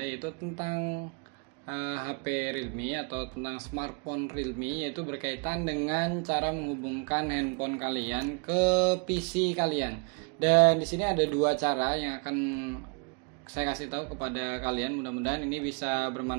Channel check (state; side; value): quieter; left; 33.5 dB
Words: yaitu tentang HP Realme atau tentang smartphone Realme, yaitu berkaitan dengan cara menghubungkan handphone kalian ke PC kalian. Dan di sini ada dua cara yang akan saya kasih tahu kepada kalian. Mudah-mudahan ini bisa